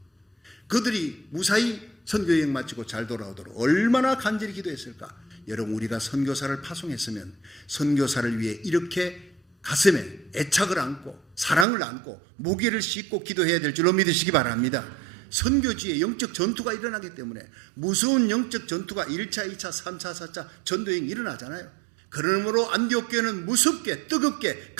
그들이 무사히 선교여행 마치고 잘 돌아오도록 얼마나 간절히 기도했을까. 여러분 우리가 선교사를 파송했으면 선교사를 위해 이렇게 가슴에 애착을 안고 사랑을 안고 무게를 싣고 기도해야 될 줄로 믿으시기 바랍니다. 선교지에 영적 전투가 일어나기 때문에 무서운 영적 전투가 1차, 2차, 3차, 4차 전도여행이 일어나잖아요. 그러므로 안디옥 교회는 무섭게 뜨겁게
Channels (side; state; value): left; drops out; at 11.7 s